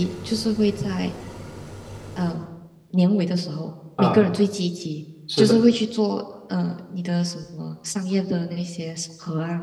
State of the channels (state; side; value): identical; both; correlation 1.00